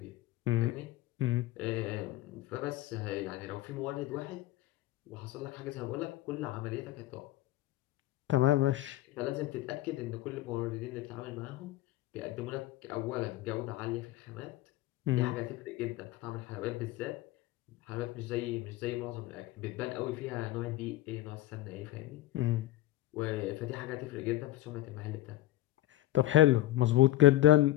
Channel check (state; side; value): quieter; right; 15.8 dB